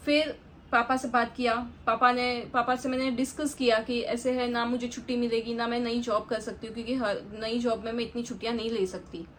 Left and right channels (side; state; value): both; identical; correlation 1.00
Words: फिर पापा से बात किया, पापा से मैंने डिस्कस किया कि ऐसे है ना, मुझे छुट्टी मिलेगी ना, मैं नई जॉब कर सकती हूँ, क्योंकि हर नई जॉब में मैं इतनी छुट्टियाँ नहीं ले सकती।